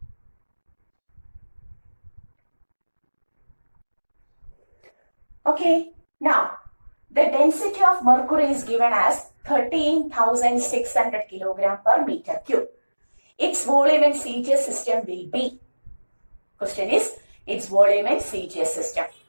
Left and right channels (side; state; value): both; inverted; correlation -1.00